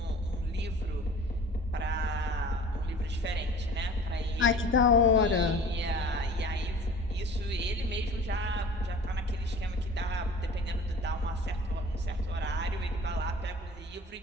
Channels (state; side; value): normal; both; correlation 0.43